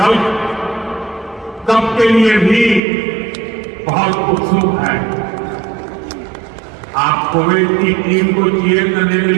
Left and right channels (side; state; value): left; drops out; at 2.8 s